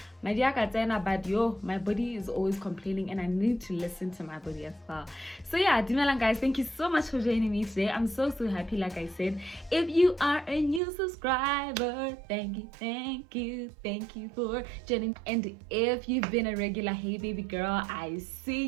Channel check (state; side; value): drops out; left; at 10.8 s